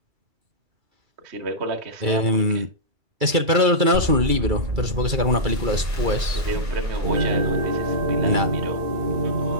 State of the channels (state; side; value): late; left; 2.3 ms